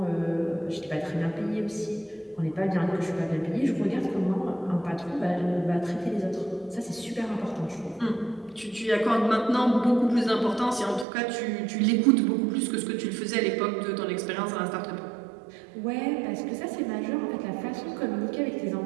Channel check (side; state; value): left; drops out; at 11.1 s